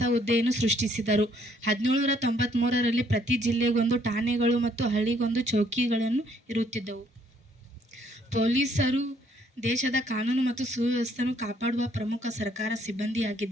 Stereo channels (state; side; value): normal; both; correlation 0.66